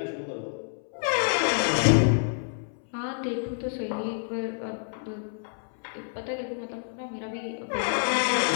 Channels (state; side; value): silent; right; 59 dB below the other